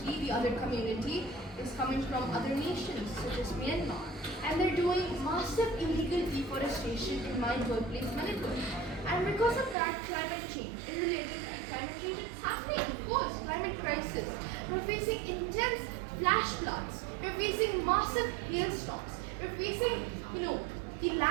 the other community, is coming from other nations, such as Myanmar. And they're doing massive illegal deforestation in my birthplace, Manipur. And because of that, climate change, in relation to climate change, it's happening, of course, climate crisis. We're facing intense flash floods. We're facing massive hailstorms. We're facing, the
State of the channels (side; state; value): left; drops out; at 9.8 s